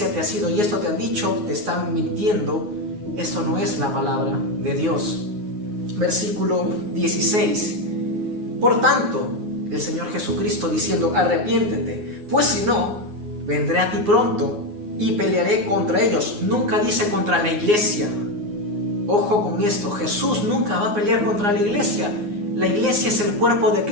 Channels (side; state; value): left; late; 9.6 ms